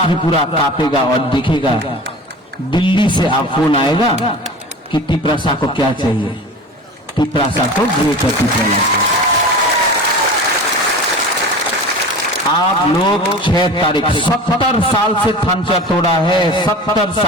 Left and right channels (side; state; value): both; normal; correlation 0.36